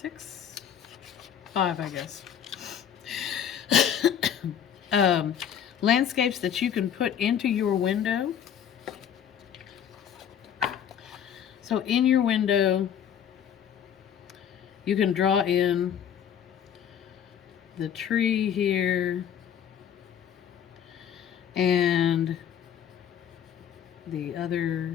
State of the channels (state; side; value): quieter; right; 8.9 dB